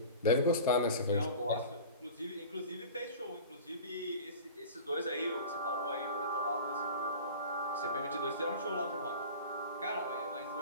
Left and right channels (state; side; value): inverted; both; correlation -0.37